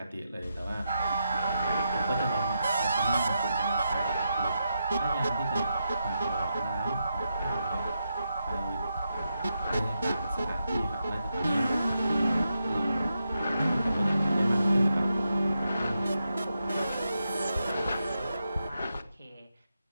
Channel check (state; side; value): inverted; both; correlation -0.85